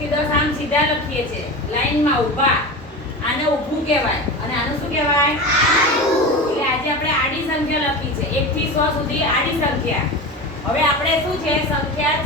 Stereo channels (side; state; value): both; normal; correlation 0.27